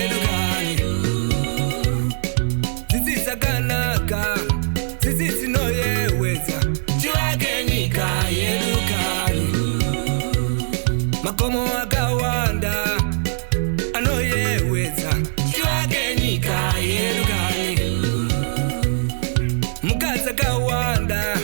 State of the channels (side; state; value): left; silent; 61 dB below the other